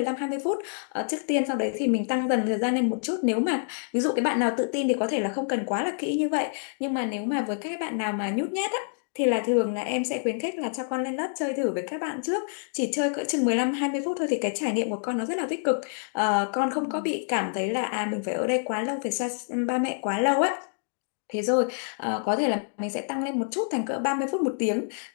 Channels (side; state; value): right; silent; digital silence